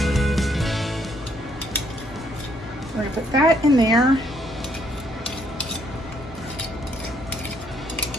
We're going to put that in there.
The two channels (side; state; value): both; normal; correlation 0.69